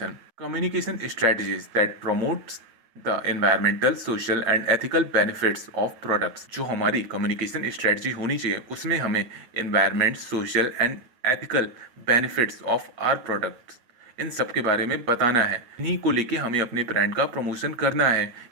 Communication strategies that promotes the environmental, social and ethical benefits of products. जो हमारी कम्युनिकेशन स्ट्रेटजी होनी चाहिए उसमें हमें environment, social and ethical benefits of our products, इन सब के बारे में बताना है। इन्हीं को लेके हमें अपने ब्रांड का प्रमोशन करना है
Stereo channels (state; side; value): late; left; 9.3 ms